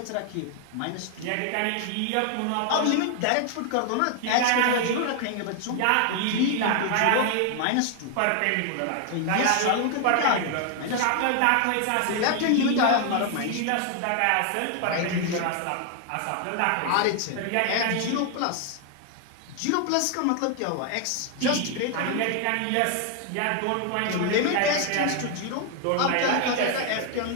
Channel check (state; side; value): different; both; correlation 0.00